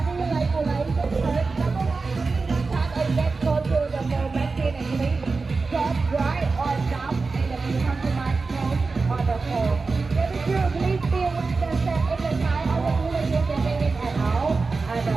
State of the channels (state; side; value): quieter; left; 4.1 dB